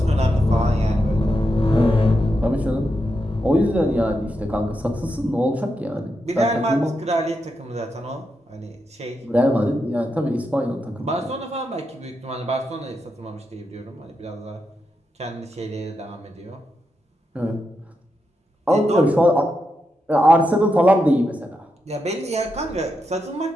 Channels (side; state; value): both; normal; correlation 0.85